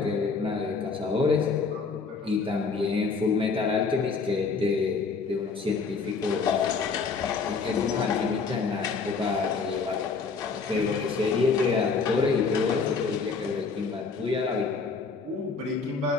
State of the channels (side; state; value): right; quieter; 4.9 dB